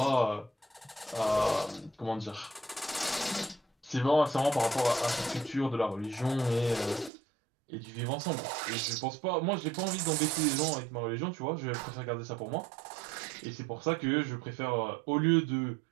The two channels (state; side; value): drops out; left; at 7.1 s